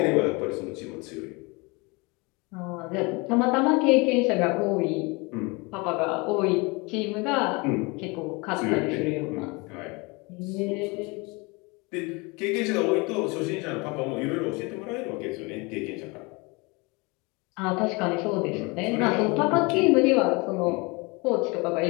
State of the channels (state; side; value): quieter; right; 27.3 dB